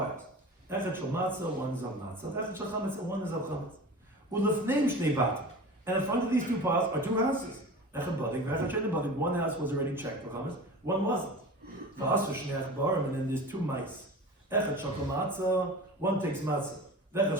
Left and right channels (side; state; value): both; normal; correlation 0.35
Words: Echad shel matzah, 1 is of matzah. Echad shel chametz, and 1 is of chametz. Ulefneim shnei batim. And in front of these 2 piles are 2 houses. Echad badik, v'echad shel badik. 1 house was already checked for chametz, 1 wasn't. V'asu shnei achbarim, and then there's 2 mice. Echad shel matzah, 1 takes matzah. V'echad